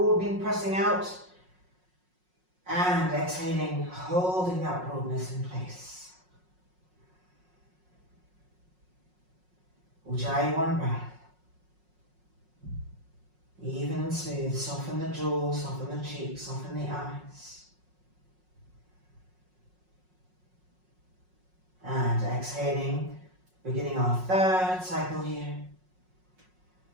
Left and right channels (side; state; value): left; late; 5.5 ms